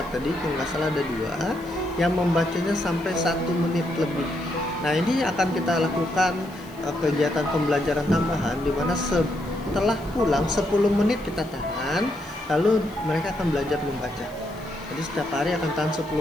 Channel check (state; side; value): noise; left; hiss, 25 dB below the sound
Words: tadi, kalau nggak salah ada 2, yang membacanya sampai 1 menit lebih. Nah, ini akan kita lakukan kegiatan pembelajaran tambahan di mana setelah pulang 10 menit kita tahan, lalu mereka akan belajar membaca. Jadi setiap hari akan tahan